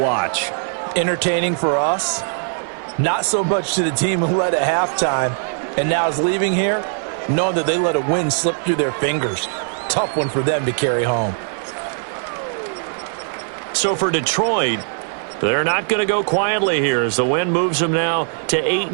Entertaining for us, not so much to the team who led at halftime and now is leaving here, knowing that they let a win slip through their fingers. Tough one for them to carry home. So for Detroit, they're not going to go quietly here as the win moves them now to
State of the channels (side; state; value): left; silent; 57 dB below the other